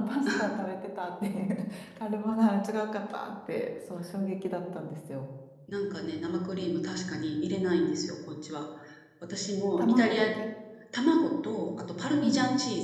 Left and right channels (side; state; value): both; identical; correlation 1.00